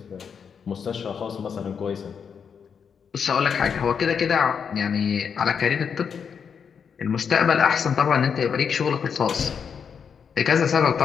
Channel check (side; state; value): right; quieter; 6.8 dB